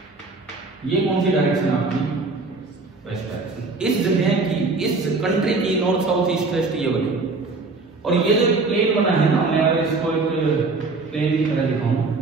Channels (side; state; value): left; quieter; 3.8 dB